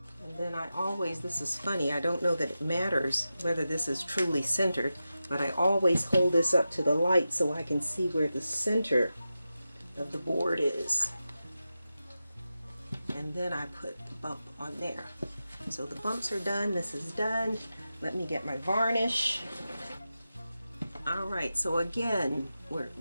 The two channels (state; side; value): inverted; both; correlation -0.92